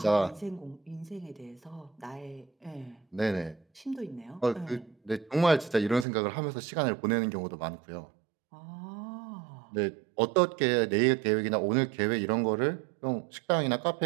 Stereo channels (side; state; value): left; drops out; at 6.1 s